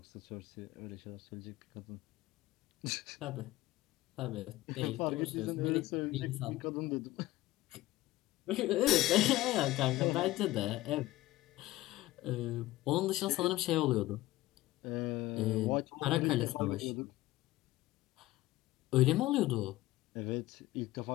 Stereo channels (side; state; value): right; quieter; 17.2 dB